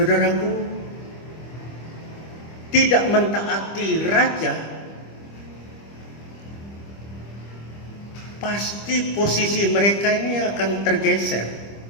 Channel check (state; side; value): late; right; 25 ms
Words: tidak mentaati raja, pasti posisi mereka ini akan tergeser.